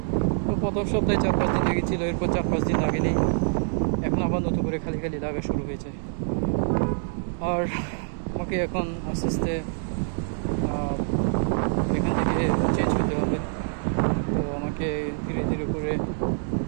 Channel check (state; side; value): silent; left; digital silence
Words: তো প্রথম সপ্তাহে 4-5 দিন লেগেছিলো, এরপর 4-5 দিন লাগেনি, এখন আবার নতুন করে খালি খালি লাগা শুরু হয়েছে। আর আমাকে এখন আস্তে আস্তে এখান থেকে চেঞ্জ হতে হবে। তো আমাকে ধীরে ধীরে করে